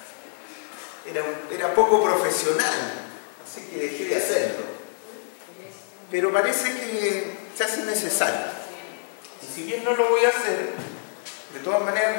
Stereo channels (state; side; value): silent; right; 55 dB below the other